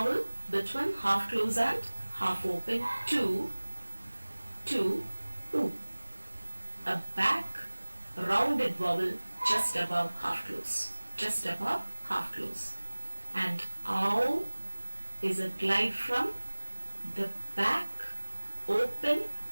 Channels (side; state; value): both; inverted; correlation -1.00